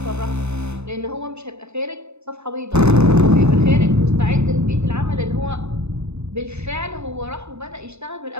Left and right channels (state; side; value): late; left; 0.81 ms